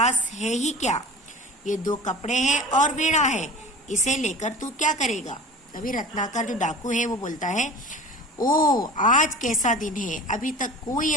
है ही क्या? ये 2 कपड़े हैं और वीणा है, इसे लेकर तू क्या करेगा? तभी रत्नाकर जो डाकू है वो बोलता है, ओ आज कैसा दिन है, अभी तक कोई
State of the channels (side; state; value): both; normal; correlation 0.39